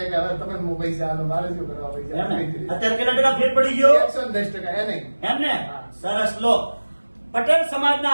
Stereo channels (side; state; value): both; inverted; correlation -1.00